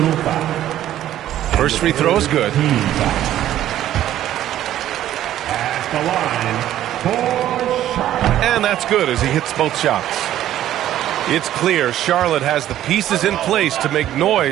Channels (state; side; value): quieter; left; 12.5 dB